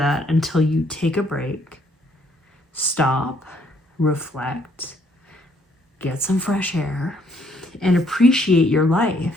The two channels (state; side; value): normal; both; correlation 0.67